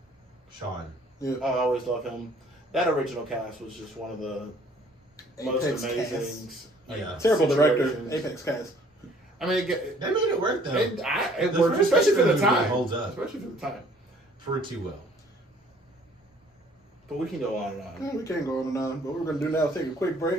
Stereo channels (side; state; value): both; normal; correlation 0.57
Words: Sean. Yeah. I always love him. That original cast was just one of the most Apex amazing. cast. Yeah. Terrible director. situations. Apex cast. I mean, They made it work though. it The worked, first especially for the X-Men movie time. holds up. Especially for the time. Pretty well. But we can go on and on. We can't go on and on, but what we're going to do now is take a quick